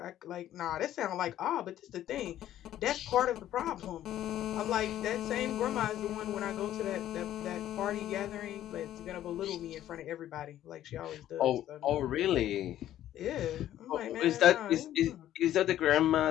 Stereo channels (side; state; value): right; quieter; 12.4 dB